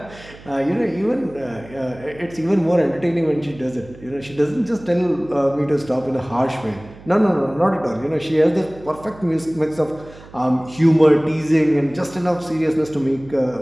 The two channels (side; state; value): right; noise; hum, 20 dB below the sound